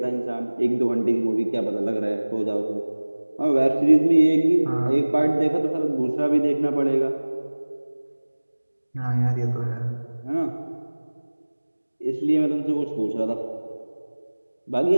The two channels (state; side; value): inverted; both; correlation -1.00